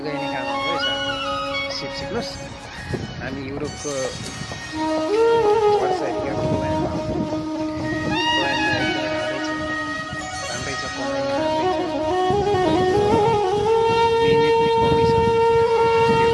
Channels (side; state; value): both; identical; correlation 1.00